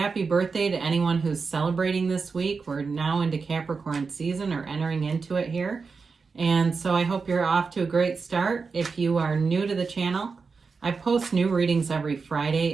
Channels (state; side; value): quieter; left; 4.9 dB